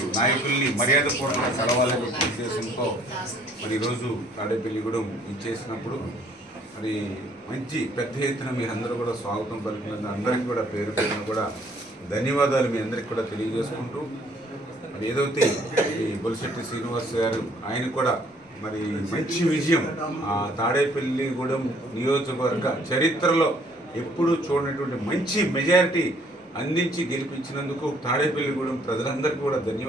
నాయకుల్ని మర్యాదపూర్వకంగా కలవాలనే ఉద్దేశంతో మరి ఈరోజు తాడేపల్లిగూడెం ఇచ్చేసినప్పుడు మరి మంచి పెద్ద ఎత్తున మీరందరూ కూడా స్వాగతం పలికినందుకు అందరికీ కూడా పేరు పేరున కూడా ధన్యవాదాలు మీ అందరికీ కూడా తెలియజేసుకుంటూ మరి ఏదైతే ఈ బొలిశెట్టి శ్రీనివాస్ గారు ఆయన కూడా మరి మంచి విజయం ఆ తాడేపల్లిగూడెం నియోజకవర్గ చరిత్రలో ఎప్పుడూ చూడనటువంటి మంచి మెజారిటీ అందించి గెలిపించినందుకు తాడేపల్లిగూడెం ప్రజలందరికీ కూడా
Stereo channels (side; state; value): both; normal; correlation 0.61